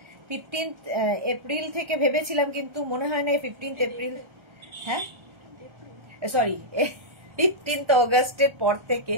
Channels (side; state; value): left; late; 1.3 ms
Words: 15 এপ্রিল থেকে ভেবেছিলাম, কিন্তু মনে হয় না 15 এপ্রিল, হ্যাঁ সরি 15 অগাস্টের পর থেকে,